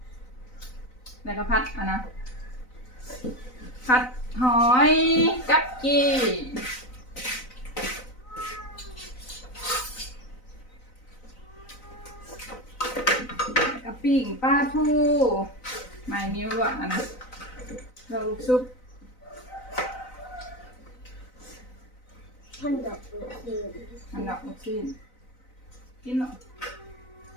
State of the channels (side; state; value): right; late; 4.0 ms